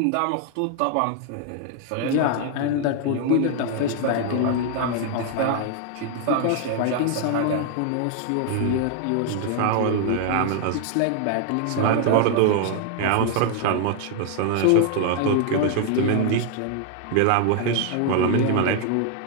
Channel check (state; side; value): different; both; correlation 0.00